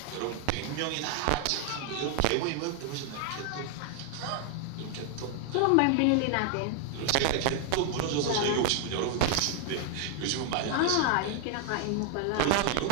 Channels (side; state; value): both; different; correlation 0.00